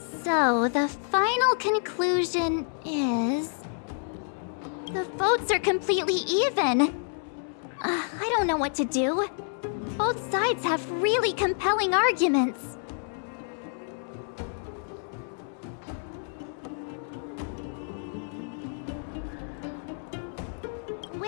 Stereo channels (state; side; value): silent; right; 59 dB below the other